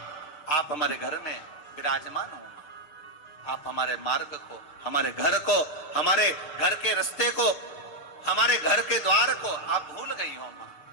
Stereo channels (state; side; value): late; right; 6.8 ms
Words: आप हमारे घर में विराजमान हो। आप हमारे मार्ग को, हमारे घर को, हमारे घर के रास्ते को, हमारे घर के द्वार को आप भूल गई हो। मां,